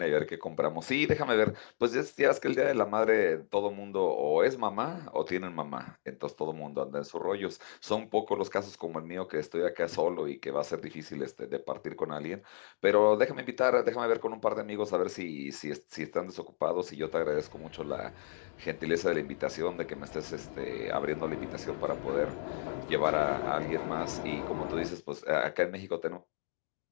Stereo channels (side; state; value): right; silent; digital silence